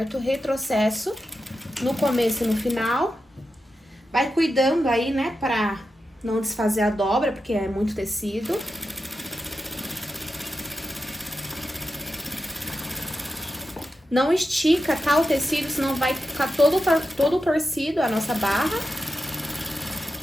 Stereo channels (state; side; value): normal; both; correlation 0.89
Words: Retrocesso no começo e no final. Vai cuidando aí, né, pra não desfazer a dobra, porque é muito tecido. Não estica, tá, o tecido, senão vai ficar todo torcido a nossa barra.